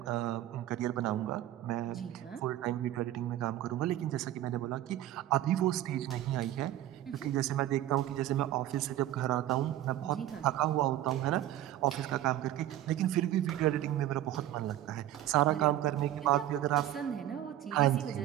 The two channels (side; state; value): left; quieter; 13.2 dB